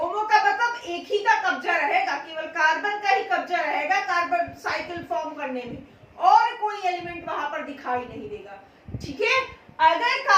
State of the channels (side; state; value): both; identical; correlation 1.00